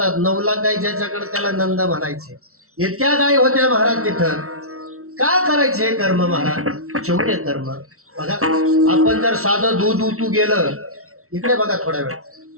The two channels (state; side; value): late; left; 0.63 ms